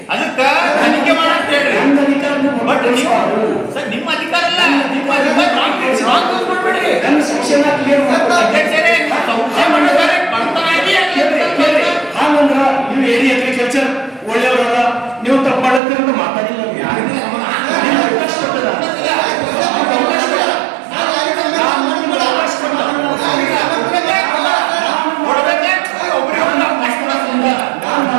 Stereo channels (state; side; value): drops out; left; at 15.8 s